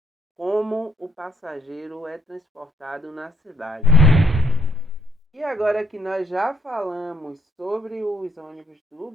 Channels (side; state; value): both; normal; correlation 0.70